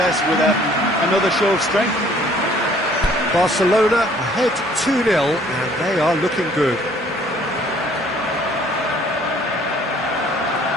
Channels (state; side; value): normal; both; correlation 0.58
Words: with another show of strength? Barcelona ahead 2-0, and they are looking good.